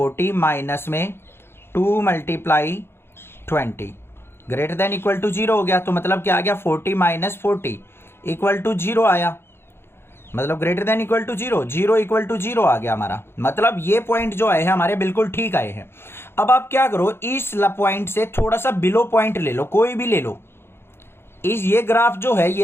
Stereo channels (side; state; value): right; late; 0.11 ms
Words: माइनस में 2 multiply 20 greater than equal to 0 हो गया। तो मतलब क्या आ गया, 40 माइनस 40 इक्वल टू 0 आया, मतलब greater than equal to 0, 0 equal to 0 आ गया हमारा। मतलब ये पॉइंट जो आए हैं हमारे बिल्कुल ठीक आए हैं। अब आप क्या करो, इस पॉइंट से थोड़ा सा बिलो पॉइंट ले लो, कोई भी ले लो। इस ये ग्राफ जो है, ये